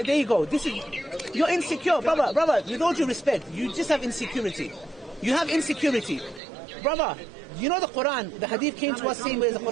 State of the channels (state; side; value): drops out; left; at 6.4 s